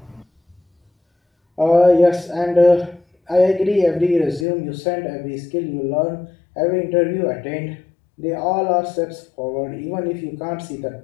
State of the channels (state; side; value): drops out; right; at 4.5 s